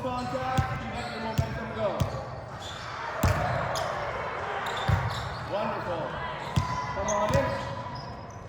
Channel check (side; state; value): both; identical; correlation 1.00